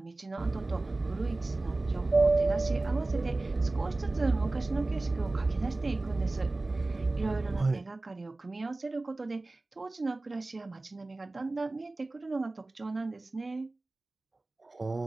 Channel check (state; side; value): quieter; left; 3.1 dB